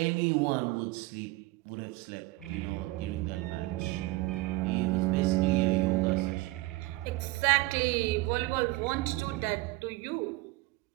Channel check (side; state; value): left; quieter; 20.2 dB